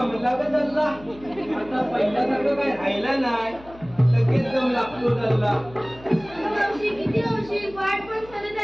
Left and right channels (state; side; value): noise; left; hum, 21 dB below the sound